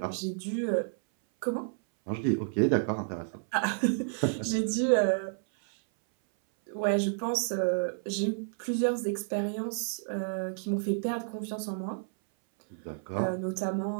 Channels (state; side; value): silent; left; 57 dB below the other